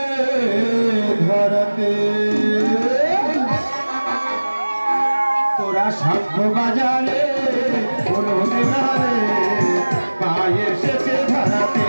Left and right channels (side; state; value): both; inverted; correlation -1.00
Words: ধরাতে তোরা শঙ্খ বাজারে হলুদের রে মা এসেছে ধরাতে